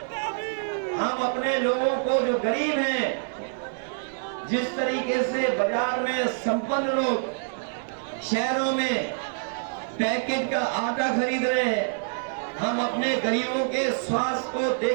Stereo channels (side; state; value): left; silent; 61 dB below the other